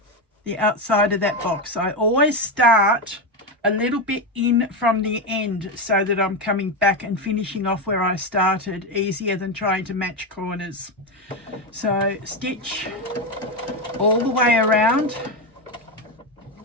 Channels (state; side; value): normal; both; correlation 0.11